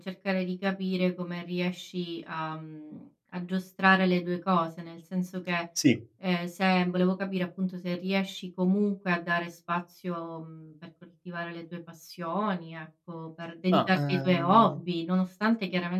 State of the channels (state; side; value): identical; both; correlation 1.00